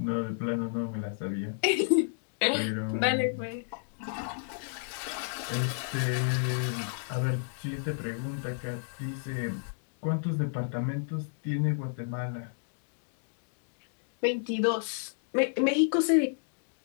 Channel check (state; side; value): silent; right; digital silence